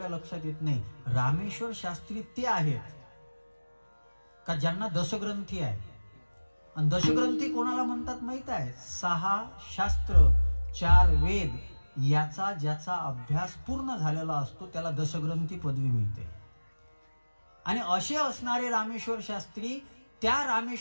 लक्षात येत नाही. रामेश्वर शास्त्री ते आहेत का ज्यांना दशग्रंथी आहे. आणि दशग्रंथी कोणाला म्हणतात माहित आहे? 6 शास्त्र 4 वेद याचा ज्याचा अभ्यास पूर्ण झालेला असतो त्याला दशग्रंथी पदवी मिळते. आणि असे असणारे रामेश्वर शास्त्री, त्या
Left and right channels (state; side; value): inverted; both; correlation -1.00